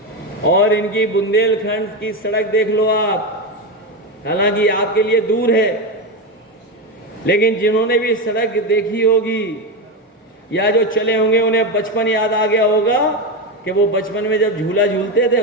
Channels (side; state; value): both; normal; correlation 0.14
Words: और इनकी बुंदेलखंड की सड़क देख लो आप। हालांकि आपके लिए दूर है, लेकिन जिन्होंने भी सड़क देखी होगी या जो चले होंगे उन्हें बचपन याद आ गया होगा कि वो बचपन में जब झूला झूलते थे